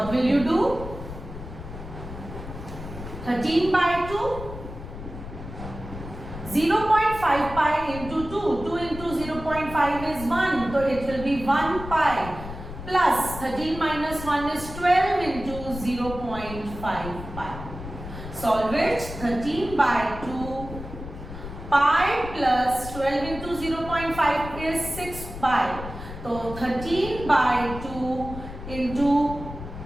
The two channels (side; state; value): left; noise; rumble, 11 dB below the sound